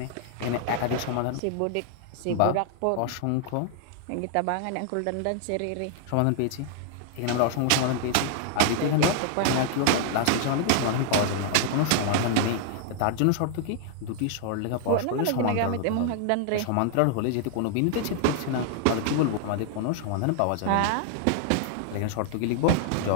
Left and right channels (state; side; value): different; both; correlation 0.00